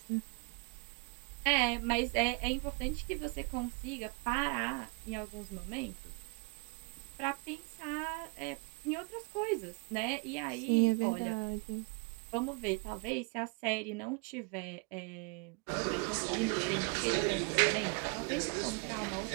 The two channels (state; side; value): quieter; left; 32.9 dB